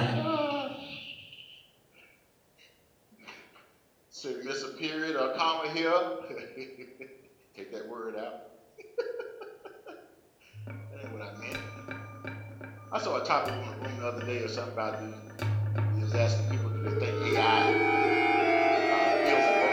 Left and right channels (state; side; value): identical; both; correlation 1.00